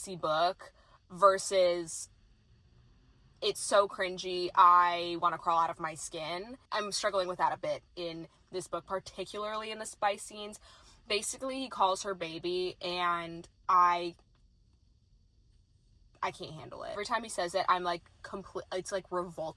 book versus it's so cringy, I want to crawl out of my skin. I'm struggling with that a bit in this book, particularly in the spice scenes. Basically, he calls her baby, and I can't handle it. Every time he says it, I'm like it's like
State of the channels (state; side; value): identical; both; correlation 1.00